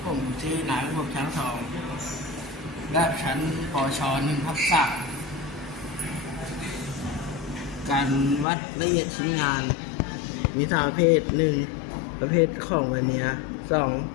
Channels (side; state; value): right; drops out; at 8.5 s